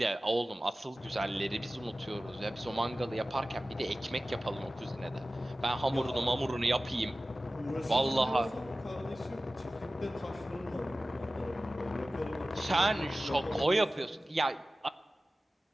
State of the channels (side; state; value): both; normal; correlation 0.96